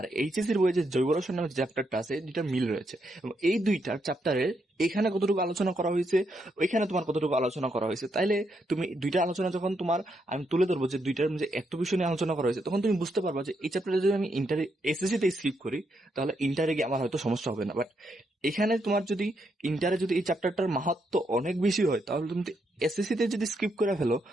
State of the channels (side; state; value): both; normal; correlation 0.79